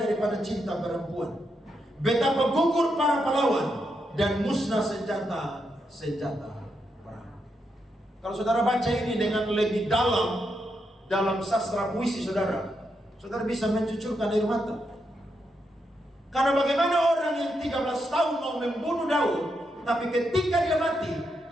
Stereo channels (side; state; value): both; normal; correlation 0.82